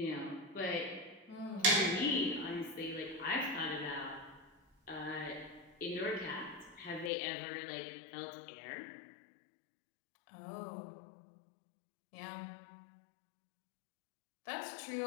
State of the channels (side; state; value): right; drops out; at 7.1 s